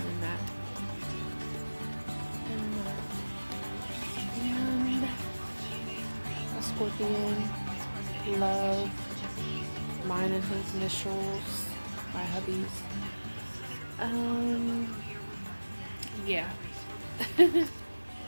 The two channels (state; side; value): inverted; both; correlation -1.00